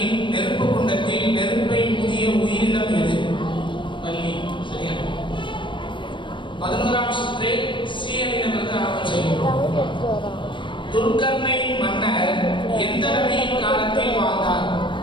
நெருப்பு குண்டத்தில் நெருப்பை ஊதிய உயிரினம் எது? பல்லி சரியா. 11வது சுற்று சி அணியினருக்கு ஆரம்பம் செய்கிறோம். துல்கர்னை மன்னர் எந்த நபியின் காலத்தில் வாழ்ந்தார்?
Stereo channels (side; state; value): right; late; 0.24 ms